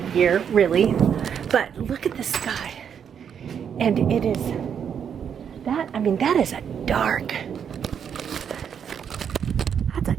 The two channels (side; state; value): left; quieter; 7.9 dB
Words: year, really. But look at the sky. And it is that, I mean, that is a dark, that's a